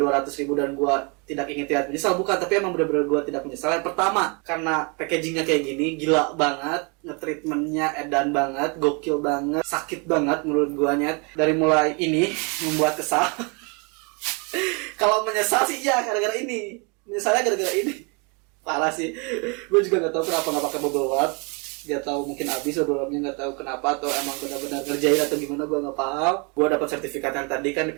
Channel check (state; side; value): quieter; left; 32.8 dB